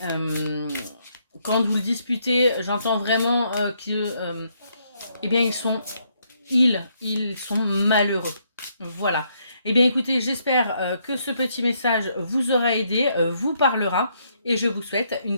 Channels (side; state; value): both; inverted; correlation -0.73